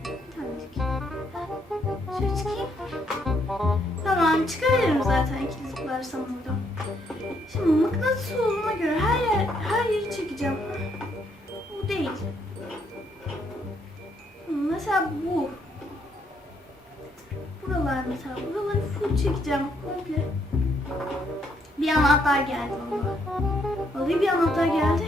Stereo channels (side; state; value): both; normal; correlation 0.72